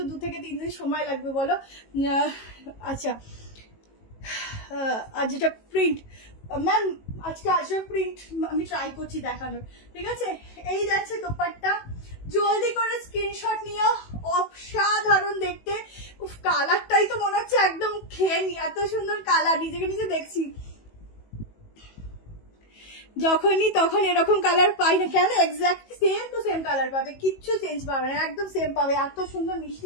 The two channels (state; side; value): late; right; 18 ms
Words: 2 থেকে 3 দিন সময় লাগবে, বলো? আচ্ছা, আর যেটা প্রিন্ট ম্যাম, আজকে আজরাক প্রিন্ট আমি ট্রাই করছি দেখানোর, ঠিক আছে? এই যাচ্ছে দোপাট্টা, জলদি করে স্ক্রিনশট নিও, অসাধারণ দেখতে। উফ কালারটাই তো মনে হচ্ছে একদম খেয়ে নি, এত সুন্দর কালার, নিজেকে নিজে দেখছি। যখনই তখন এরকম কালার পাই না কেন, exactly same to same colour পাবে, কিচ্ছু চেঞ্জ পাবে না, একদম সেম পাবে, এত সুন্দর